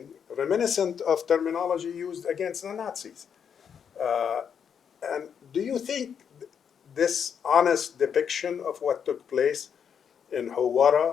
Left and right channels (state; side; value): quieter; right; 7.5 dB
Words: reminiscent of terminology used against the Nazis. And do you think this honest depiction of what took place in